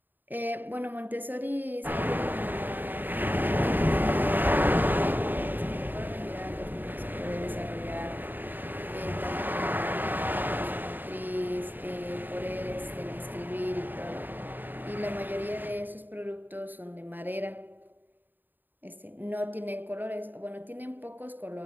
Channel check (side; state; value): left; late; 0.090 ms